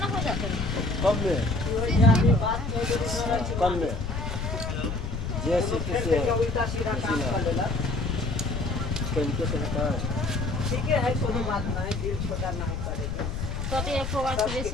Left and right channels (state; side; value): noise; left; rumble, 4 dB below the sound